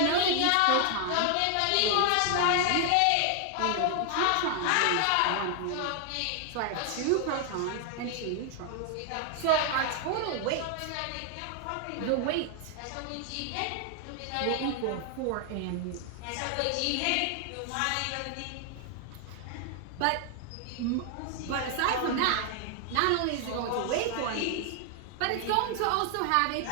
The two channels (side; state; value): both; different; correlation 0.00